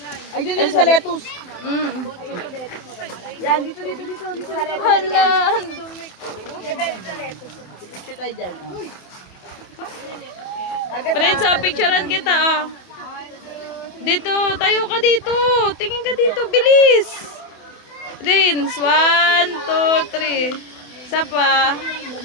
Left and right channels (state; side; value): late; right; 28 ms